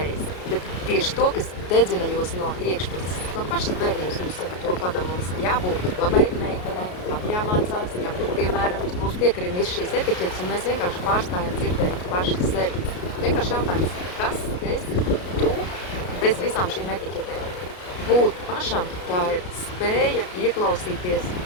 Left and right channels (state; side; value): late; right; 33 ms